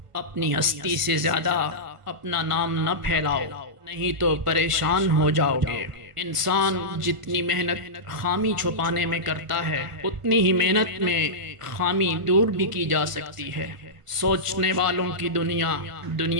اپنی ہستی سے زیادہ اپنا نام نہ پھیلاؤ، نہیں تو پریشان ہو جاؤ گے۔ انسان جتنی محنت خامی چھپانے میں کرتا ہے اتنی ہی محنت میں خامی دور بھی کی جا سکتی ہے۔ سوچنے والوں کی دنیا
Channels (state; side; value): late; left; 1.5 ms